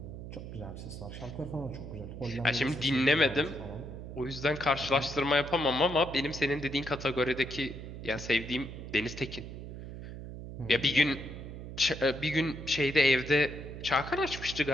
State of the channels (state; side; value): noise; right; hum, 10 dB below the sound